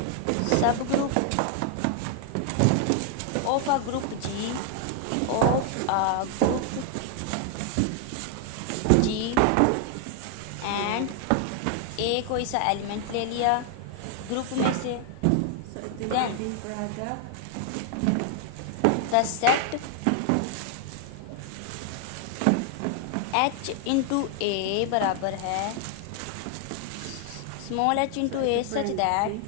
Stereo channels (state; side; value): different; both; correlation 0.00